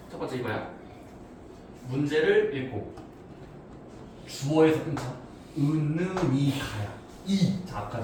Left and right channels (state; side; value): identical; both; correlation 1.00